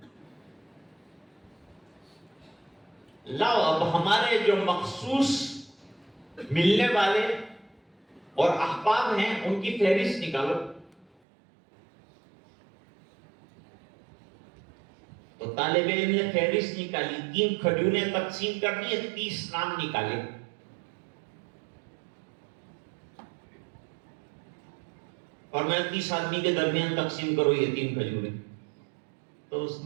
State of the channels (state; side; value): drops out; left; at 11.1 s